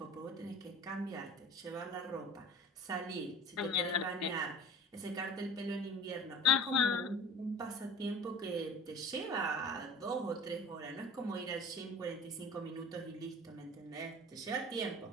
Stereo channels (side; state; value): both; normal; correlation 0.39